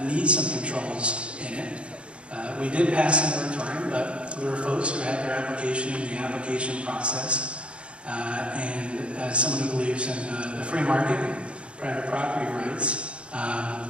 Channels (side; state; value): left; late; 0.059 ms